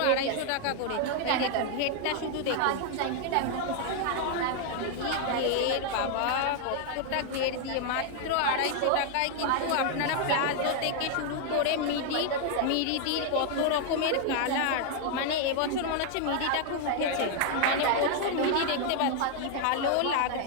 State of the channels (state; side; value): different; both; correlation 0.00